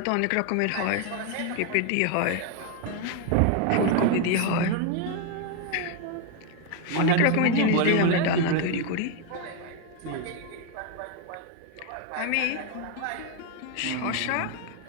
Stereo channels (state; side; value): different; both; correlation 0.01